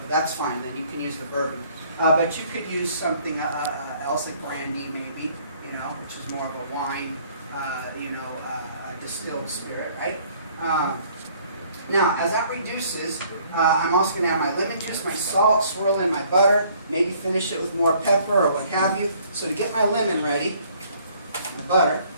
that's fine. Then you can use the bourbon. But you could use something else, like brandy maybe, you know, which is more of a wine, you know, a distilled spirit, right? Now, as that reduces, I'm also going to add my lemon juice, my salt, swirl in my butter, maybe finish it with more pepper or what have you. So to get my lemon ready, my butter,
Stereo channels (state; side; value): inverted; both; correlation -0.60